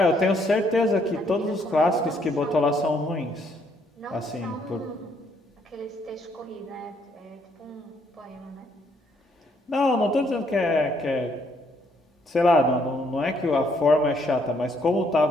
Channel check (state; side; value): normal; both; correlation 0.70